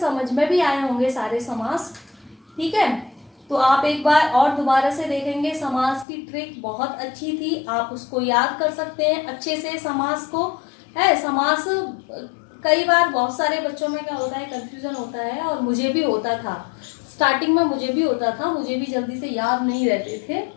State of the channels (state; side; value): drops out; right; at 6.1 s